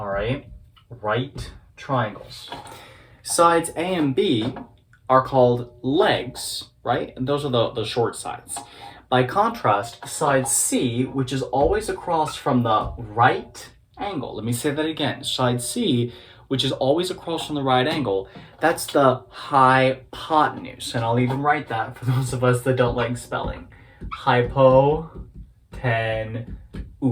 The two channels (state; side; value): identical; both; correlation 1.00